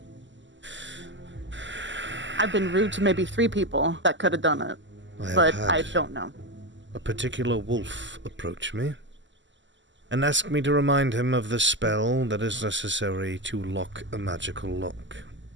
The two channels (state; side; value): late; left; 0.54 ms